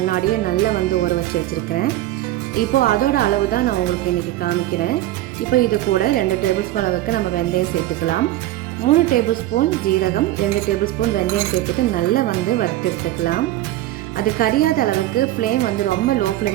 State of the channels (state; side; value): quieter; left; 15.0 dB